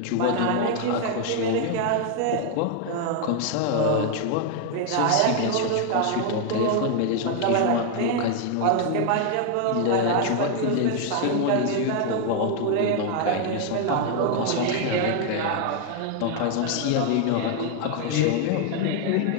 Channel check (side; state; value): both; different; correlation 0.00